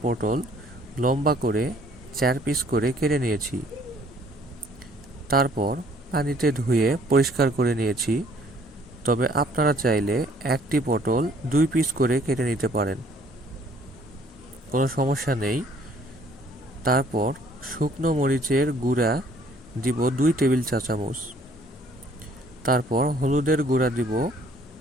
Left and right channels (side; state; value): both; normal; correlation 0.60